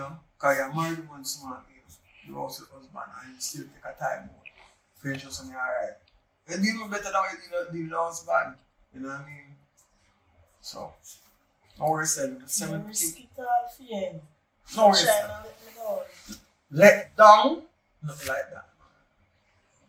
Because you're married one smart, you're also a husband and you still take a time out for your shows and you're alright. You deal better than you deal with the husband. You know what I mean? So, no worries, the 17. Risk it all for you. No worries. Try not let me go. Let down, nothing like that.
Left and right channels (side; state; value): both; identical; correlation 1.00